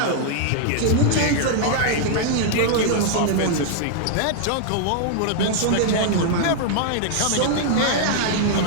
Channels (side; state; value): both; different; correlation -0.01